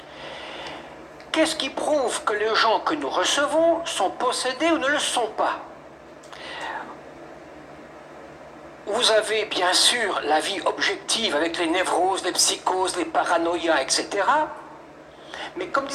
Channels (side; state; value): both; identical; correlation 1.00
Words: Qu'est-ce qui prouve que les gens que nous recevons sont possédés ou ne le sont pas? Vous avez bien sûr la vie objective avec les névroses, les psychoses, les paranoïas, etc. Mais comme